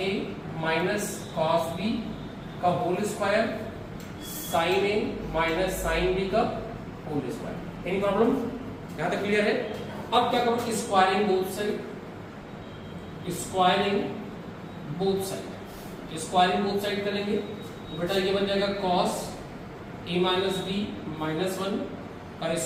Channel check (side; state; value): both; identical; correlation 1.00